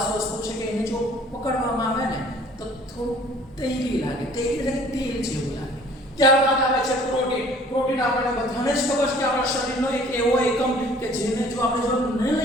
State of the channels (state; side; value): normal; both; correlation 0.53